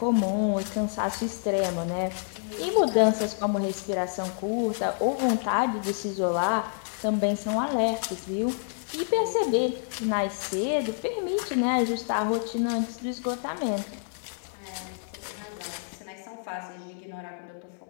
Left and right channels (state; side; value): silent; right; digital silence